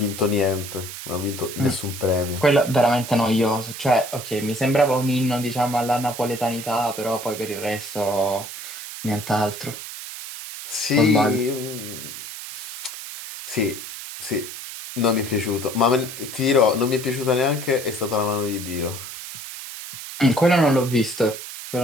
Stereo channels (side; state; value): right; noise; hiss, 10 dB below the sound